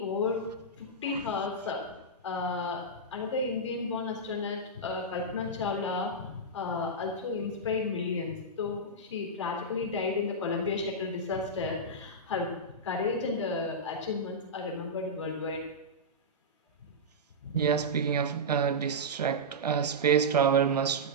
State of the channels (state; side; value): normal; both; correlation -0.10